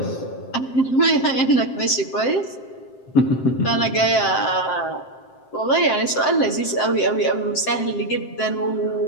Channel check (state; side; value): late; right; 7.6 ms